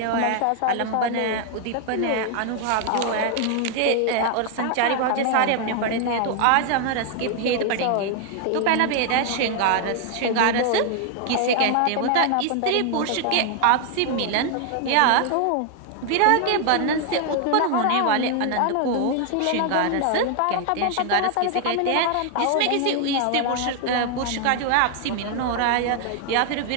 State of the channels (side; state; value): both; different; correlation 0.00